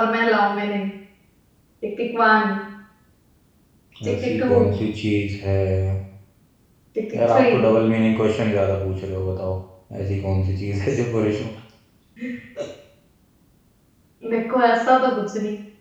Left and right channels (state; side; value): identical; both; correlation 1.00